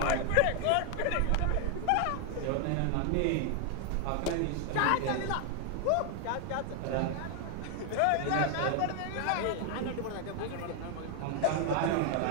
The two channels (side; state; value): both; different; correlation 0.00